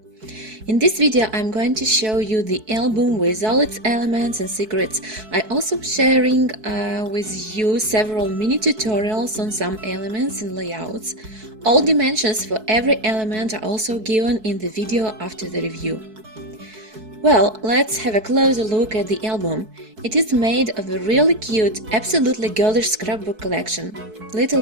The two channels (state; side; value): late; left; 4.6 ms